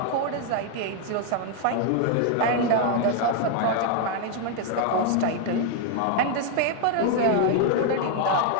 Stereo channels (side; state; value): both; different; correlation 0.00